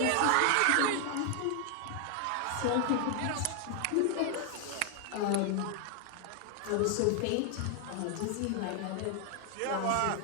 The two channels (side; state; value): both; different; correlation 0.00